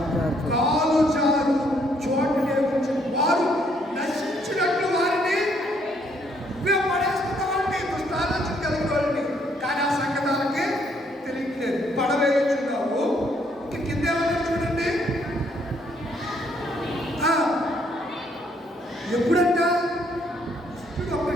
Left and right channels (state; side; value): normal; both; correlation 0.69